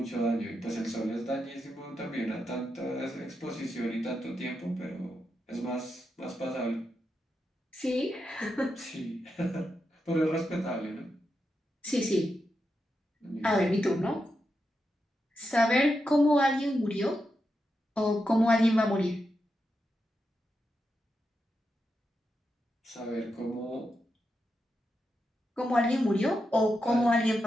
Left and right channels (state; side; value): normal; both; correlation 0.86